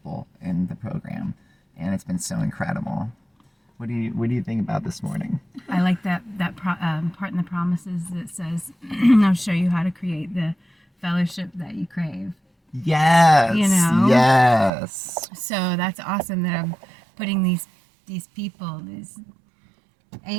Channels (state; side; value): drops out; left; at 14.7 s